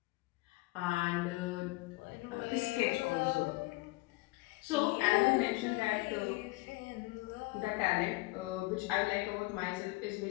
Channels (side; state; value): right; quieter; 22.2 dB